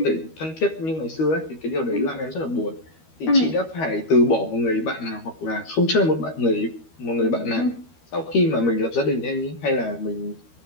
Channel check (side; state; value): right; late; 13 ms